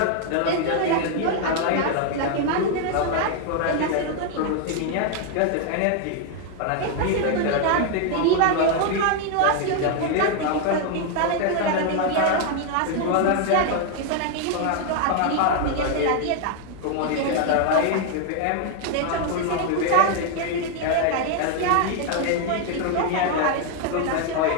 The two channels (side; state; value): both; different; correlation 0.00